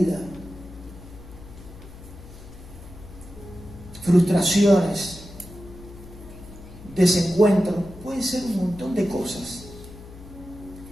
frustraciones, desencuentro, puede ser un montón de cosas.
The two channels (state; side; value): noise; left; hum, 17 dB below the sound